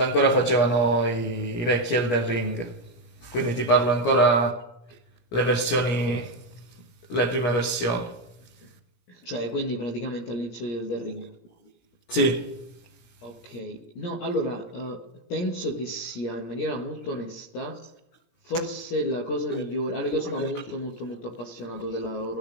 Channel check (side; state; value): right; late; 17 ms